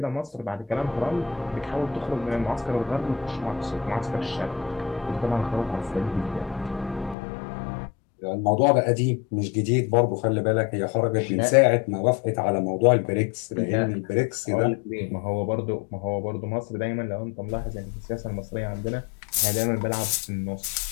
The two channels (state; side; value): drops out; right; at 7.2 s